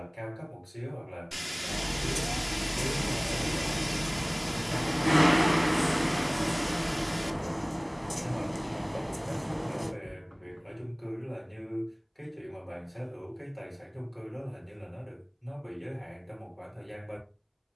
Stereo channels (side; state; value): both; identical; correlation 1.00